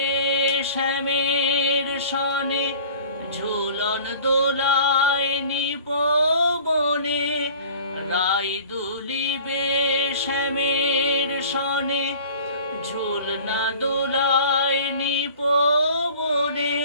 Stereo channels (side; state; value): both; inverted; correlation -0.45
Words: শ্যামের সনে ঝুলন দোলায় নিপবনে, রাই দুলিবে শ্যামের সনে ঝুলনা দোলায় নিপবনে।